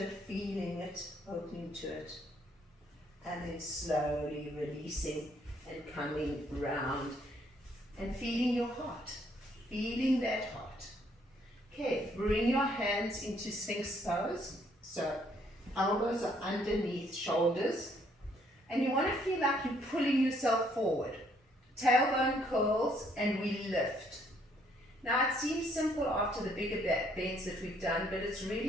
it, feeling it, opening to it. And then slowly releasing and coming round and feeling your heart, feeling that heart. Okay, bring your hands into Sphinx pose. So elbows are underneath shoulders. And you want to feel like you're pulling yourself forward. Tailbone curls and we lift. Now it seems simple after the bigger back bends that we've done, but it's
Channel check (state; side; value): normal; both; correlation 0.67